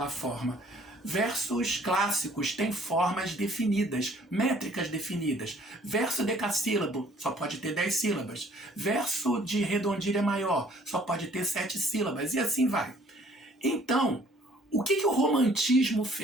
forma. Versos clássicos têm formas definidas, métricas definidas. Verso decassílabo só pode ter 10 sílabas. Verso de redondilha maior só pode ter 7 sílabas, e assim vai. Então, o que o romantismo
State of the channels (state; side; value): normal; both; correlation 0.58